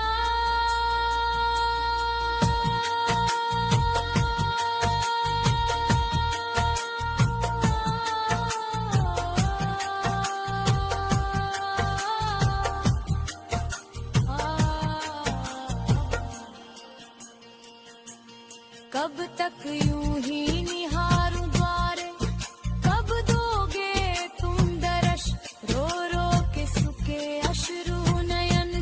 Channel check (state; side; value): identical; both; correlation 1.00